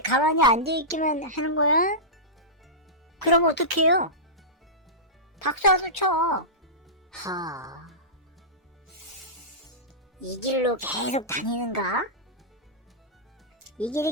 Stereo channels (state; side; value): normal; both; correlation -0.16